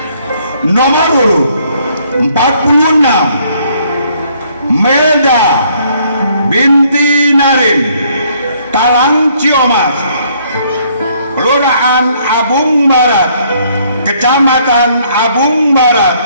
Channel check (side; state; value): both; inverted; correlation -0.66